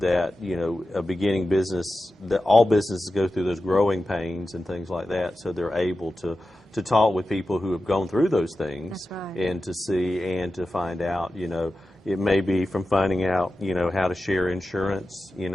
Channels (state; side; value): normal; both; correlation 0.93